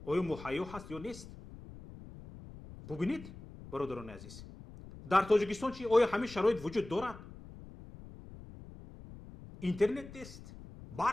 آیا مهیا هست یا نیست ببینید برادران عزیز در تاجیکستان چی آیا همین شرایط وجود دارد اینترنت نیست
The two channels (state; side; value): noise; left; rumble, 16 dB below the sound